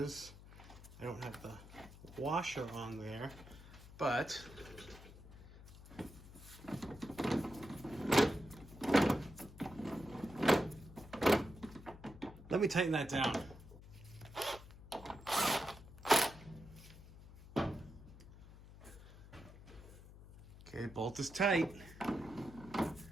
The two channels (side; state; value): left; noise; hum, 17 dB below the sound